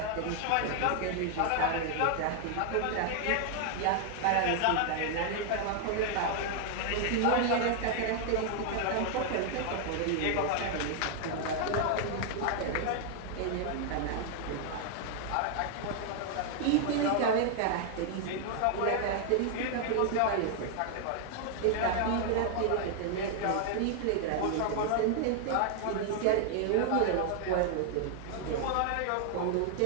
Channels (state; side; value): different; both; correlation 0.00